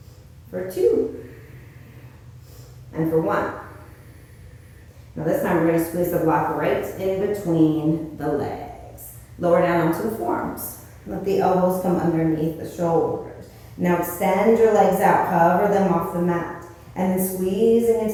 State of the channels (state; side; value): identical; both; correlation 1.00